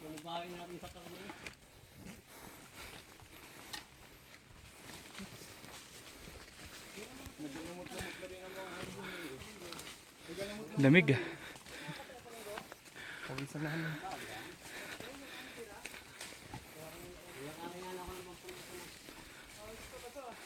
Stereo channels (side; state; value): both; identical; correlation 1.00